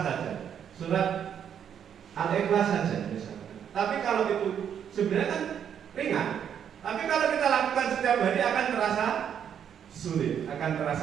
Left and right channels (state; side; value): quieter; left; 8.6 dB